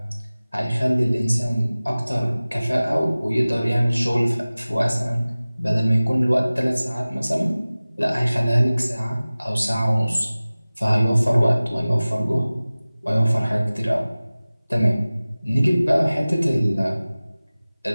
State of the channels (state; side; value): inverted; both; correlation -0.98